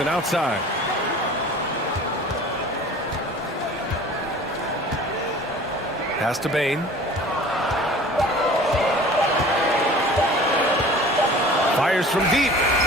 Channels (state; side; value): normal; both; correlation 0.44